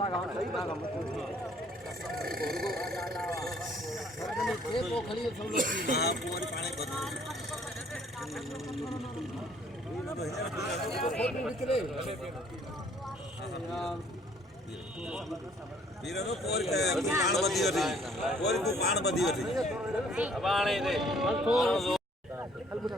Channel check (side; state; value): both; normal; correlation 0.60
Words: वीरो पोर के पाण बधी वठी पोर तू पाण बधी वठी अबाणे दे